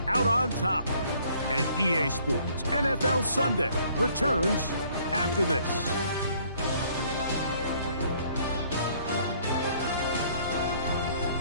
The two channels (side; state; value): both; inverted; correlation -0.61